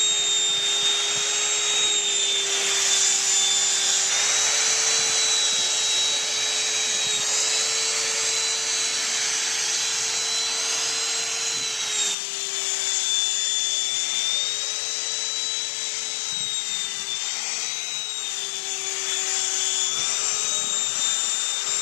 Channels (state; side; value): drops out; right; at 12.2 s